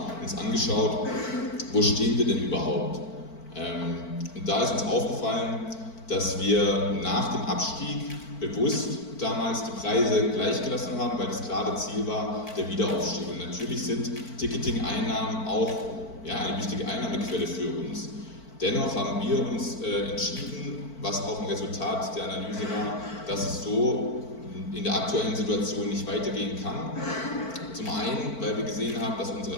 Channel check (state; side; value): late; right; 4.5 ms